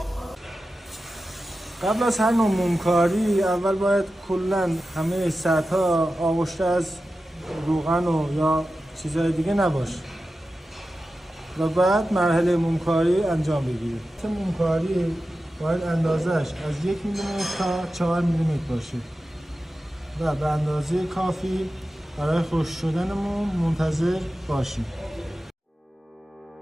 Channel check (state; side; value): normal; both; correlation 0.93